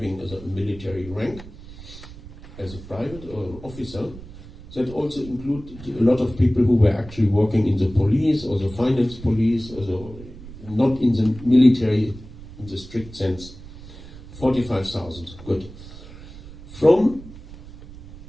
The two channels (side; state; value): right; noise; rumble, 16 dB below the sound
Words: a military rank as a private or officer. That also included a lot of people who were actually working in the police or the finance police, or not in the military in the strict sense. 45,000, good. From